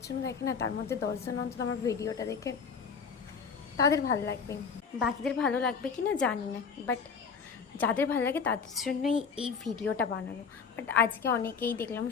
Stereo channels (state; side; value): quieter; right; 5.8 dB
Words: জন দেখে না, তার মধ্যে 10 জন অন্তত আমার ভিডিওটা দেখে তাদের ভালো লাগবে। বাকিদের ভালো লাগবে কি না জানি না, বাট যাদের ভালো লাগে তাদের জন্যই এই ভিডিওটা বানানো। বাট আজকে অনেকেই দেখলাম